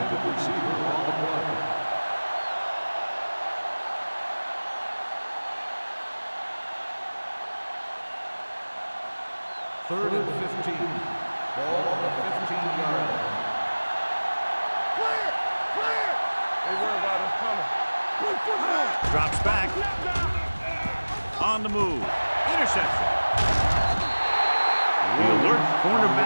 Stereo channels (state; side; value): inverted; both; correlation -1.00